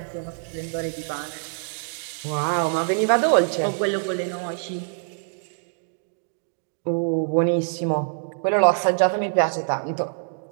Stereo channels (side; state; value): left; silent; digital silence